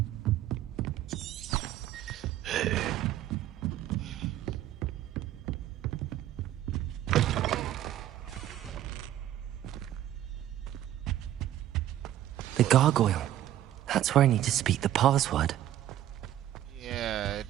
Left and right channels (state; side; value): quieter; left; 12.6 dB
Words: The gargoyle. That's where I need to speak the password. Yeah, it